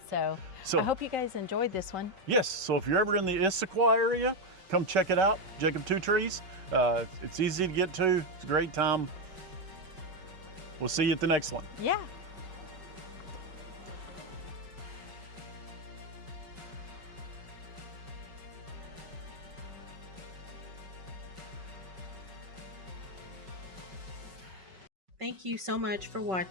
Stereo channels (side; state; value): left; late; 5.3 ms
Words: So I hope you guys enjoyed this one. Yes, so if you're ever in the Issaquah area, come check it out, Jakob Two Trees. It's easy to get to, it's a great time. We'll see you at the next one. Yeah. Thank you so much for